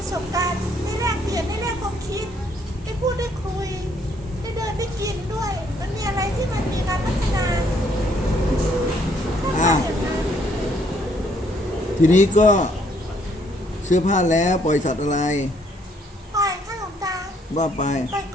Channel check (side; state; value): both; normal; correlation 0.67